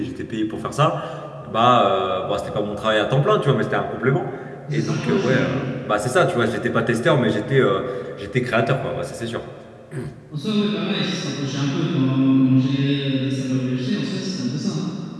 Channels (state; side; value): identical; both; correlation 1.00